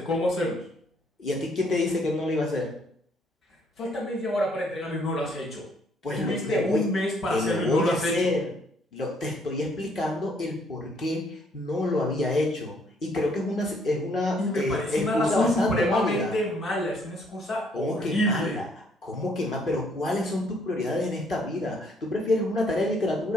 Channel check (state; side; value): normal; both; correlation 0.66